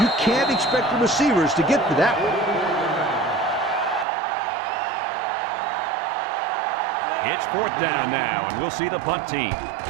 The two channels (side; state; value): left; drops out; at 4.0 s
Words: can't expect the receivers to get to that one. It's 4th down now, and we'll see the punt team.